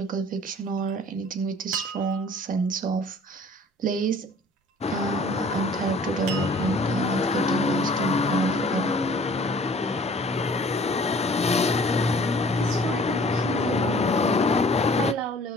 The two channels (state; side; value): normal; both; correlation 0.52